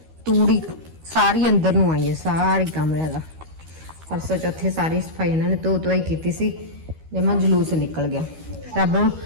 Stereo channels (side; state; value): left; late; 13 ms